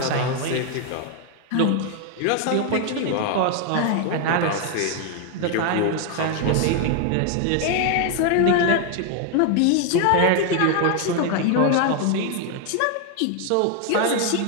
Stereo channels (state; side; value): different; both; correlation 0.01